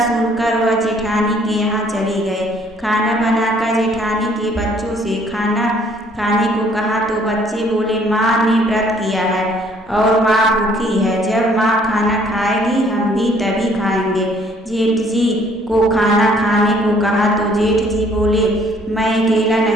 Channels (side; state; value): both; normal; correlation 0.61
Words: सुनकर वह जेठानी के यहाँ चले गए। खाना बनाकर जेठानी के बच्चों से खाना खाने को कहा तो बच्चे बोले, माँ ने व्रत किया है और माँ भूखी है। जब माँ खाना खाएगी हम भी तभी खाएंगे। जेठ जी को खाना खाने को कहा तो जेठ जी बोले, मैं अकेला